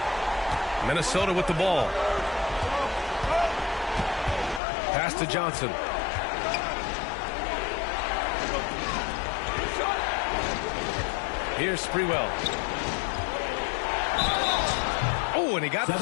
Minnesota with the ball. Pass to Johnson. Here's Sprewell. Oh, and he got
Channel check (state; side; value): drops out; right; at 4.6 s